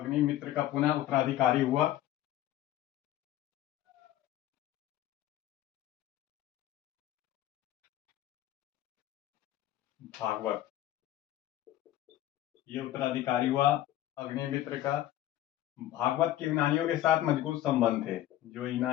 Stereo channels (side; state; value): right; quieter; 13.5 dB